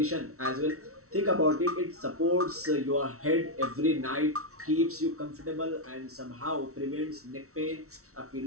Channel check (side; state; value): left; late; 0.63 ms